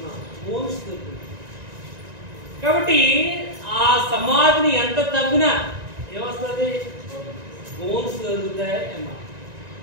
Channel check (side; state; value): left; late; 1.9 ms